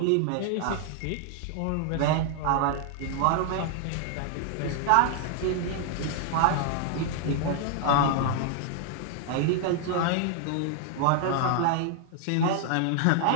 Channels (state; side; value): different; both; correlation 0.00